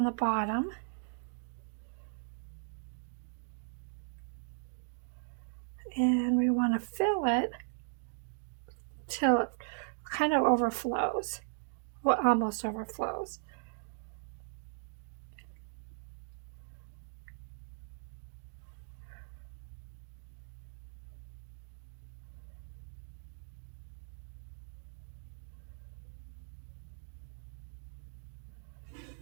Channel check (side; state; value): left; silent; digital silence